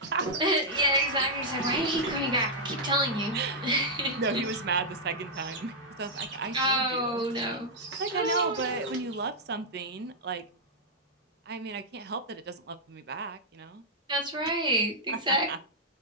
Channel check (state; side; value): normal; both; correlation -0.05